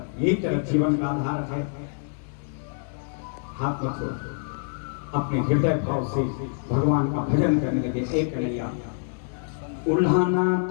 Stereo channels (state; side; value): silent; right; digital silence